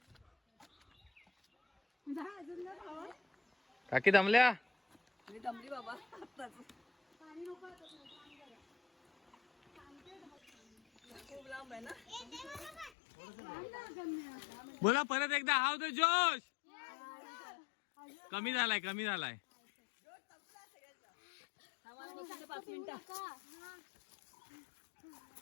जा अजून ना भावा. काकी दमल्या? मी दमली बाबा. पाणी नको आता. खूप लांब आहे ना. बोला परत एकदा हाव द जोश. कमी झालाय, कमी झालाय. 5 मिनिटं.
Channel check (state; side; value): drops out; right; at 12.9 s